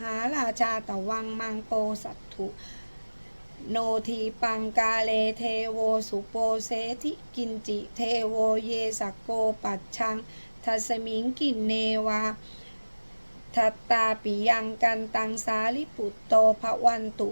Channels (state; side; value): inverted; both; correlation -1.00